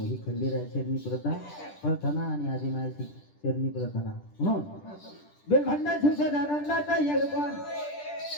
ही खंडेराय चरणी प्रार्थना आणि आदिमाई चरणी प्रार्थना म्हणून बेलभंडा शिवसानंदाचा यजमान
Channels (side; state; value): right; late; 10 ms